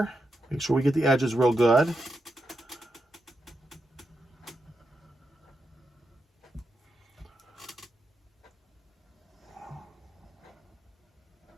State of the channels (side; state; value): both; normal; correlation 0.86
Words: Make sure we get the edges real good.